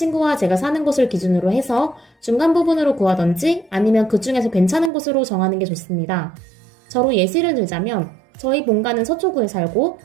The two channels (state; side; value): drops out; left; at 4.9 s